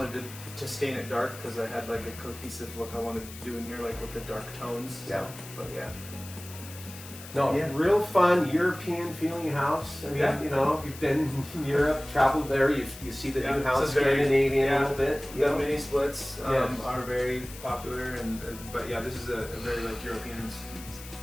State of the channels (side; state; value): left; noise; hiss, 15 dB below the sound